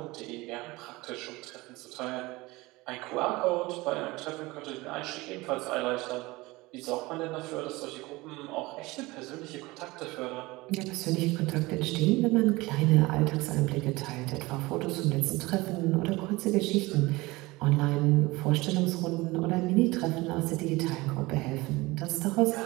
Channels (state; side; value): quieter; left; 21.5 dB